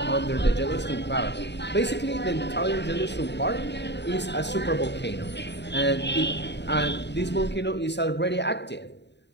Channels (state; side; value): late; right; 0.50 ms